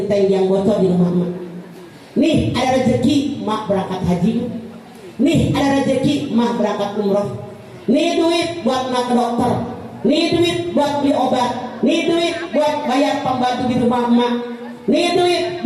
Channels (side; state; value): both; identical; correlation 1.00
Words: yang bocor di rumah emak. Nih ada rezeki, mak berangkat haji. Nih ada rezeki, mah berangkat umroh. Nih duit buat mak ke dokter. Nih duit buat beli obat. Nih duit buat bayar pembantu di rumah emak. Nih duit